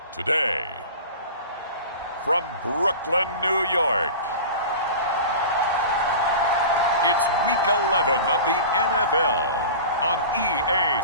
Today, from Brooklyn, New York, it's Week 11 of the NFL on EA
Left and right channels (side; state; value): both; inverted; correlation -0.35